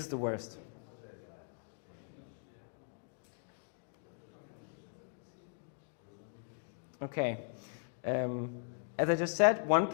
the worst. Okay. As I just said, one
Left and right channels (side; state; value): right; silent; digital silence